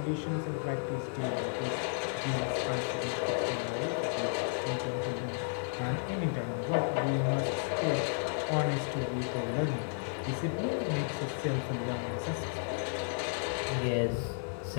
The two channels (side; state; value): right; silent; digital silence